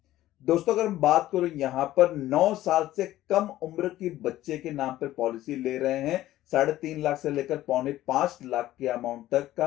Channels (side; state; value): right; quieter; 14.7 dB